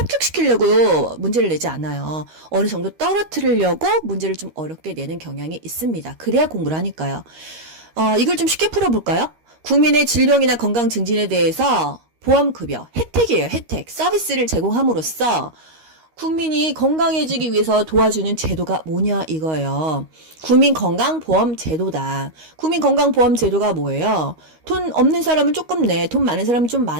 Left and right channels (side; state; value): left; late; 13 ms